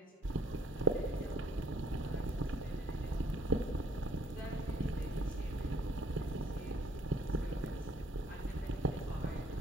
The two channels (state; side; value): normal; both; correlation 0.61